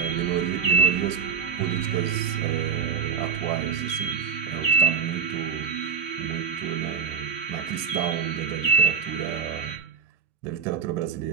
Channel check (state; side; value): quieter; left; 6.4 dB